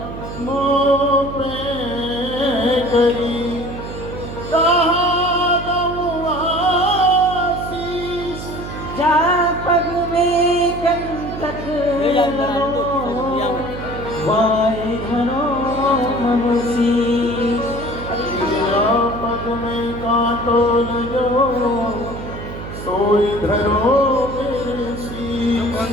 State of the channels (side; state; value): right; noise; hum, 10 dB below the sound